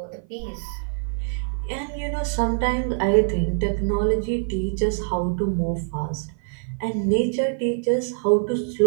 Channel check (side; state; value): left; silent; 55 dB below the other